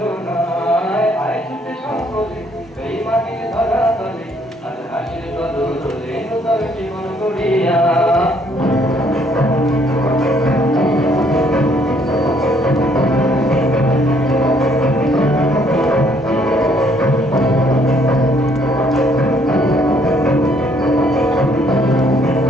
আয় ছুটে সকলে এই মাটির ধরা তলে আজ হাসির বদলে নূতন জীবন গড়িয়া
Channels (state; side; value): normal; both; correlation 0.66